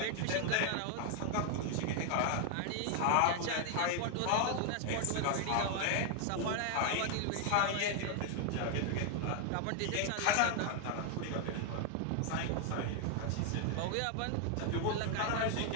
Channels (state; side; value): different; both; correlation 0.00